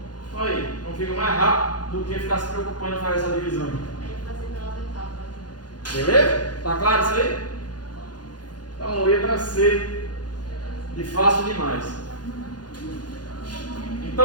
Olha aí, não fica mais rápido do que ficar se preocupando em fazer essa divisão. Beleza? Tá claro isso aí? Então, letra C de fácil demais.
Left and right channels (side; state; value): right; late; 0.69 ms